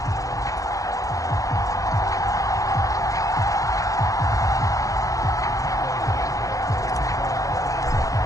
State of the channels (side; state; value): right; late; 0.16 ms